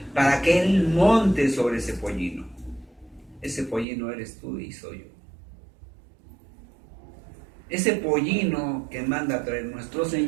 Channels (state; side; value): drops out; left; at 3.9 s